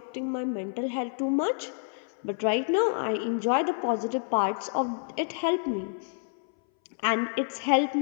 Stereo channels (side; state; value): right; silent; 59 dB below the other